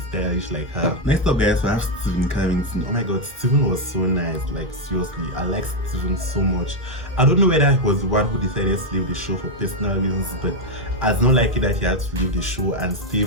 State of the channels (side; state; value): both; normal; correlation 0.03